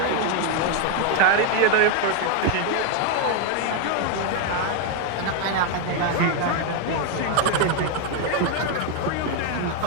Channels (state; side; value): different; both; correlation 0.01